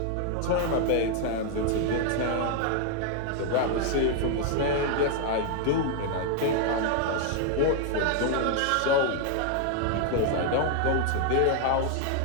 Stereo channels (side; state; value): both; different; correlation 0.00